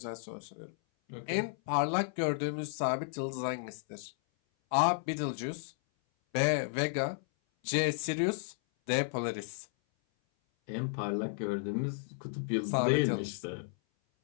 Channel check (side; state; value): right; silent; 56 dB below the other